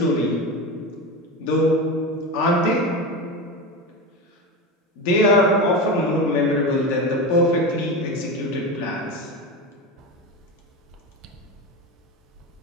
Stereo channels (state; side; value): normal; both; correlation 0.22